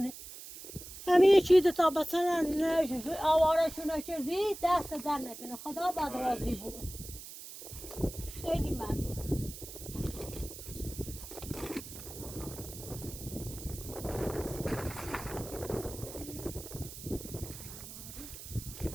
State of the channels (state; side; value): noise; right; hiss, 12 dB below the sound